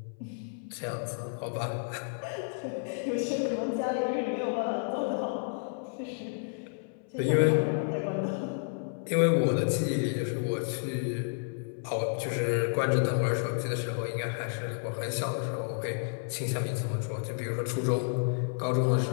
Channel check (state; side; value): silent; right; 57 dB below the other